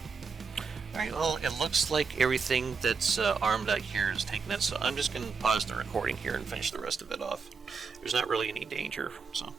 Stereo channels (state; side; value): quieter; left; 5.3 dB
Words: Alright, well, it looks like everything that's armed out here is taking it, so I'm just going to pause the recording here and finish the rest of it off. There's not really any danger, so